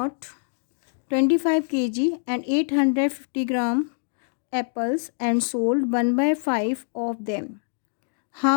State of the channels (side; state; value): right; silent; digital silence